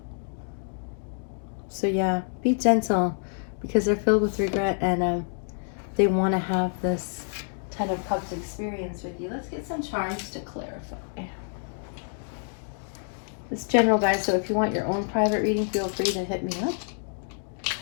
So yeah, be gentle, because they're filled with regret, and they want to have this 10 of Cups experience with you. Let's get some charms to clarify. It's general, guys, so if you want your own private reading, feel free to hit me up.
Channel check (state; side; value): silent; right; 60 dB below the other